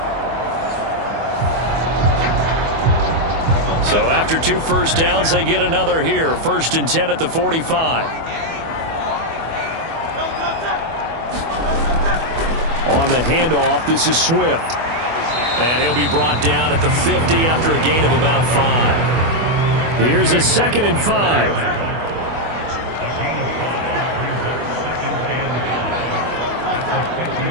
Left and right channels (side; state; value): left; late; 24 ms